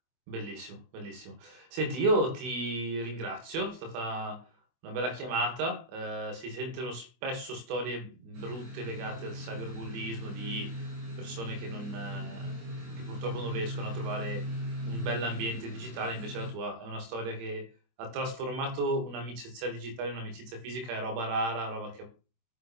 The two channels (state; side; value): late; left; 24 ms